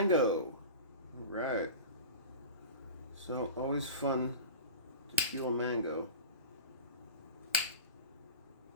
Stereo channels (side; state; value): both; inverted; correlation -0.31